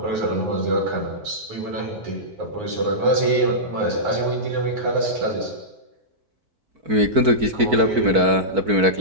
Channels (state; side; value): late; left; 4.5 ms